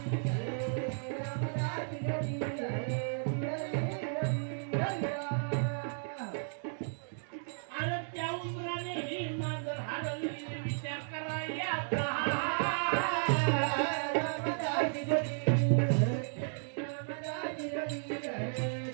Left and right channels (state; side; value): silent; left; digital silence